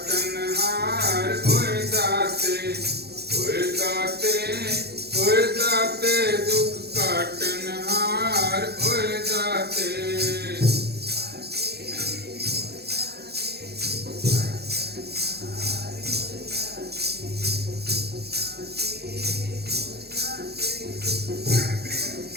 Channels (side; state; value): left; late; 0.47 ms